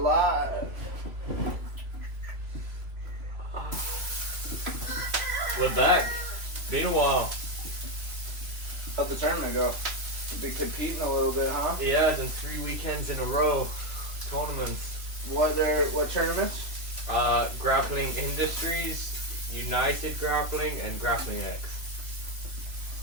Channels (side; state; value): left; late; 2.9 ms